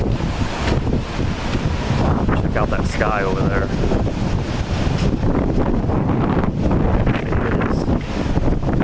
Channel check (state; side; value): identical; both; correlation 1.00